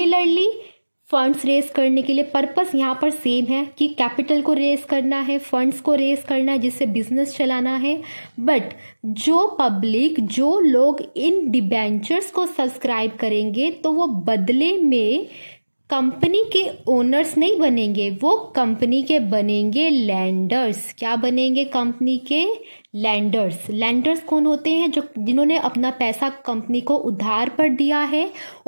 फंड्स रेज करने के लिए पर्पस यहाँ पर सेम है कि कैपिटल को रेज करना है, फंड्स को रेज करना है, जिससे बिजनेस चलाना है। बट जो पब्लिक, जो लोग इन डिबेंचर्स को सब्सक्राइब करेंगे, तो वो बदले में कंपनी के ओनर्स नहीं बनेंगे, वो कंपनी के बनेंगे लैंडर्स। क्या बनेंगे, कंपनी के लैंडर्स। लैंडर्स कौन होते हैं, जिन्होंने अपना पैसा कंपनी को उधार पर दिया है,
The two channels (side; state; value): both; inverted; correlation -1.00